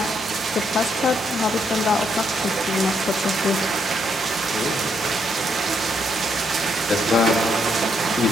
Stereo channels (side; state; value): both; normal; correlation 0.75